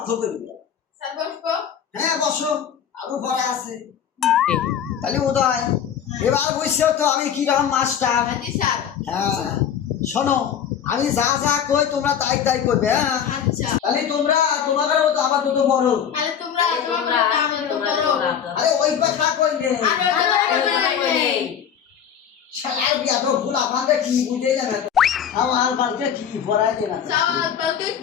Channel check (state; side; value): quieter; right; 8.4 dB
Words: করবে। হ্যাঁ বসো, আরো পড়া আছে। তাহলে উদয়, এবার বুঝছো তো আমি কিরকম মাস্টার? হ্যাঁ শোনো, আমি যা যা কই তোমরা তাই তাই করবে। হ্যাঁ তাহলে তোমরা তোমাদেরও তো আবার তো বড়। আরে ওই কথা কইলে শালার বিয়া তো ভুল, আমাদের কি বুঝে যাবে? আমার বালকে কি পড়াই দেনা,